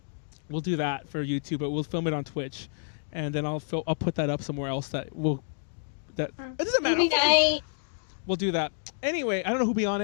We'll do that for YouTube, but we'll film it on Twitch, and then I'll put that up somewhere else that will. That it doesn't matter. Movie night. We'll do that. Anyway, I don't know who'll be on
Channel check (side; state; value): right; silent; digital silence